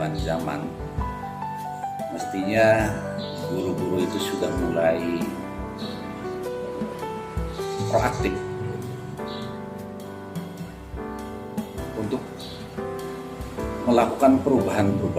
zaman mestinya guru-guru itu sudah mulai proaktif untuk melakukan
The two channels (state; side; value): identical; both; correlation 1.00